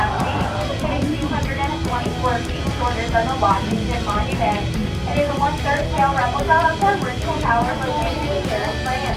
It is 224 feet shorter than the Washington Monument. It is a 1/3 scale replica of the original tower located in Paris, France,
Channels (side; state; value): both; identical; correlation 1.00